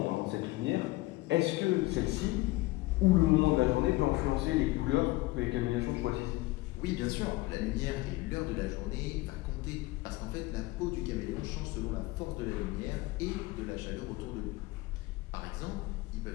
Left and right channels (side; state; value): right; quieter; 20.0 dB